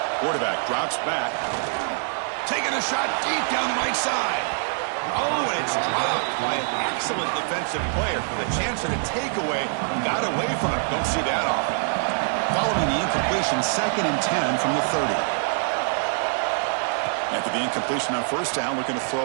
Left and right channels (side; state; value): left; silent; 61 dB below the other